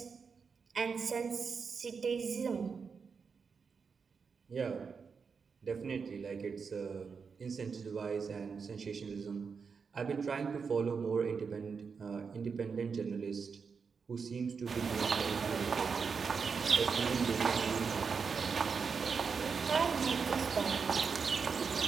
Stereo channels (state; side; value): quieter; left; 5.6 dB